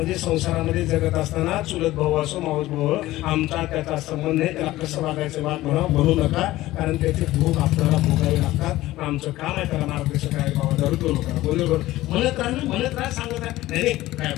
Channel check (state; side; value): quieter; right; 16.6 dB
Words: संसारामध्ये जगत असताना चुलत भाऊ असो मावस भाऊ, आमचा त्याचा संबंध नाही, त्याला कसं वागायचं वाद म्हणू नका, कारण त्याचे भोग आपल्याला भोगावे लागतात. आमचं काम आहे त्याला मार्गदर्शन करायला, बाबा दारू तो लोकांना बरोबर म्हणत राहा सांगत आहे. नाही काय